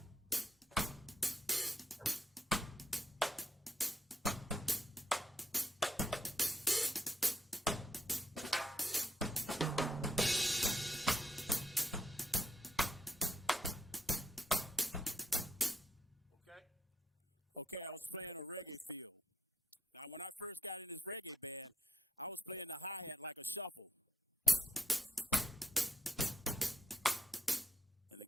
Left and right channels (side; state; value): both; normal; correlation 0.80